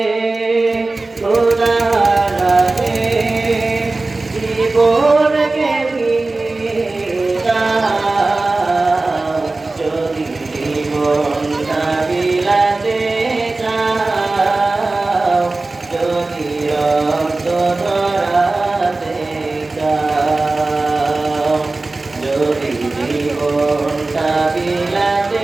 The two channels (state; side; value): quieter; left; 3.3 dB